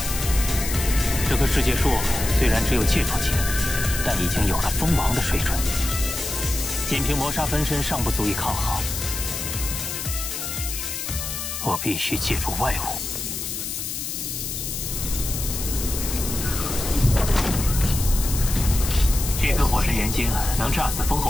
这棵世界树虽然只有戒除级，但已经有了封王的水准。仅凭魔杀分身尚不足以抗衡，我必须借助外物。这颗火神元晶能炸死封侯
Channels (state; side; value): noise; left; hiss, 5 dB below the sound